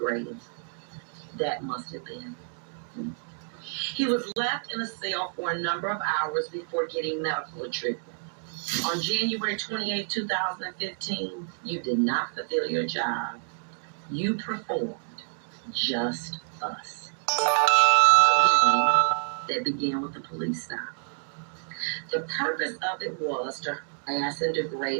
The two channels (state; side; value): silent; left; 59 dB below the other